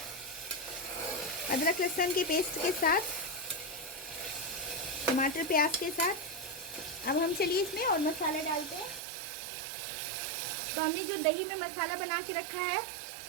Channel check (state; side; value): drops out; left; at 9.0 s